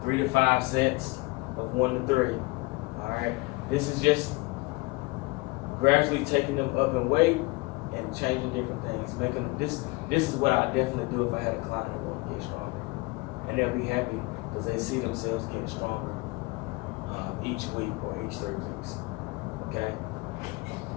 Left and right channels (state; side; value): quieter; right; 24.4 dB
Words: 3 to 5 sets of 1 to 3. All right. This is just gradually taking them up in weight and changing different things. Making this is what I definitely do if I had a client that want to get stronger, and they'll be happy because they see themselves getting stronger each week or each 3 weeks. Okay.